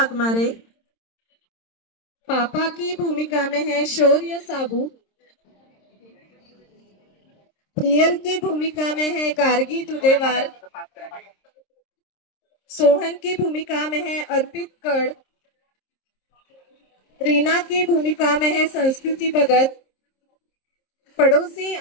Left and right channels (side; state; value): right; late; 26 ms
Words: पापा की भूमिका में है शौर्य साबू, प्रियल की भूमिका में है गार्गी दुदेवार, सोहन की भूमिका में है अर्पित कड़, रीना की भूमिका में है संस्कृति भगत, पड़ोसी